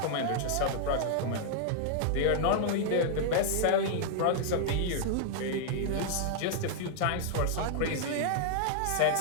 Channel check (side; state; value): both; different; correlation -0.01